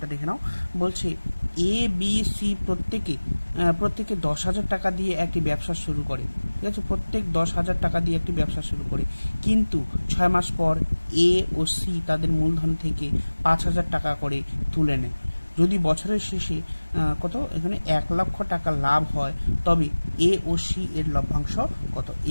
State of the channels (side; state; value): both; inverted; correlation -1.00